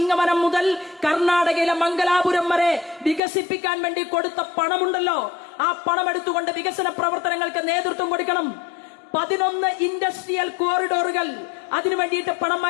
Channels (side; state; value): right; drops out; at 3.2 s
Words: മുതൽ കർണാടകയിലെ മംഗലാപുരം വരെ വികസിപ്പിക്കാൻ വേണ്ടി കൊടുത്ത പണമുണ്ടല്ലോ, ആ പണം എടുത്തുകൊണ്ട് വികസന പ്രവർത്തനങ്ങൾക്ക് നേതൃത്വം കൊടുക്കണം. 11 ഇൻഡസ്ട്രിയൽ കോറിഡോറുകൾ അതിനു വേണ്ടിയിട്ട് പണം